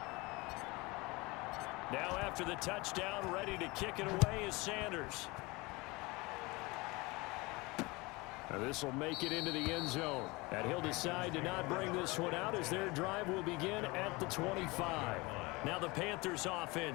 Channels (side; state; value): right; quieter; 24.1 dB